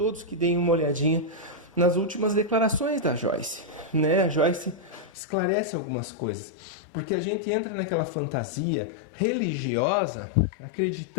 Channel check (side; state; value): right; drops out; at 5.1 s